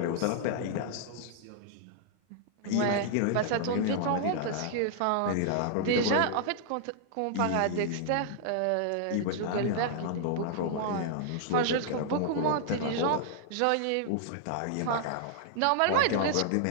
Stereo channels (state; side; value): different; both; correlation -0.01